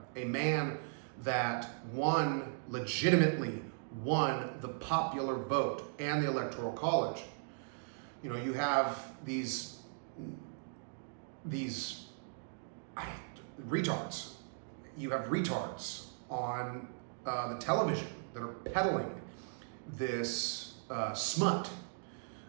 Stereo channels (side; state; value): left; silent; digital silence